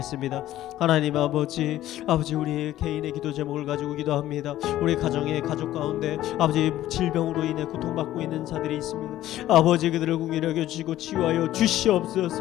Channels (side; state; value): right; quieter; 13.9 dB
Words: 하나님 아버지, 아버지 우리 개인의 기도 제목을 가지고 기도합니다. 우리 가정의 가족 가운데 아버지 질병으로 인해 고통받고 있는 자들이 있습니다. 아버지 그들을 긍휼히 여겨주시고 치유하여